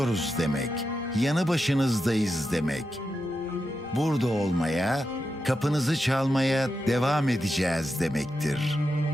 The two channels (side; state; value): both; normal; correlation 0.88